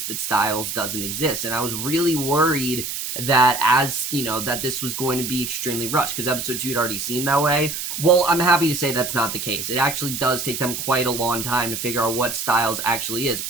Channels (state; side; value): noise; right; hiss, 5 dB below the sound